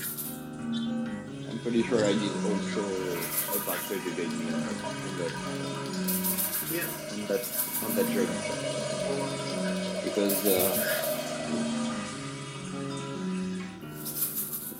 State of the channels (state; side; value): identical; both; correlation 1.00